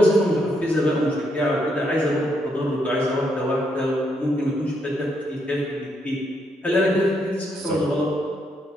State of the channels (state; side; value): normal; both; correlation 0.76